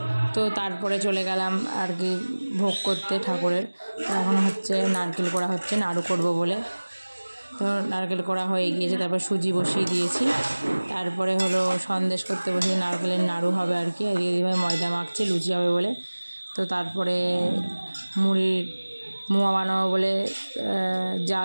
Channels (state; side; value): inverted; both; correlation -1.00